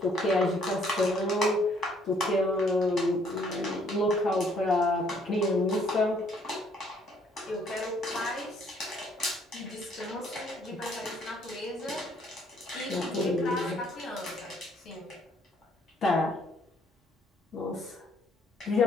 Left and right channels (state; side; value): normal; both; correlation 0.64